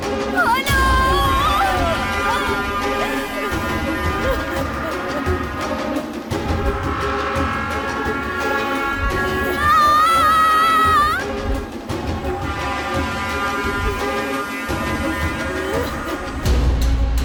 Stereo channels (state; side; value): identical; both; correlation 1.00